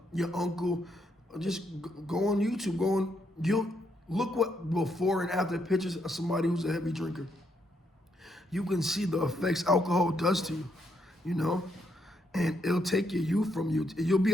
Your uncle, just go on YouTube, you'll look what before and after pictures of somebody who's a heavy drinker. You can see the effects alcohol does to you, and it'll take your youth from you. You'll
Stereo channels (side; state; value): both; normal; correlation 0.76